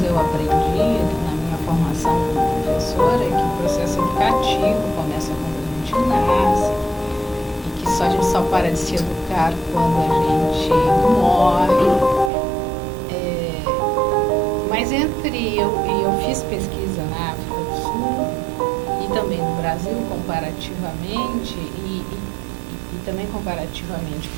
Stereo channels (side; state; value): left; drops out; at 12.3 s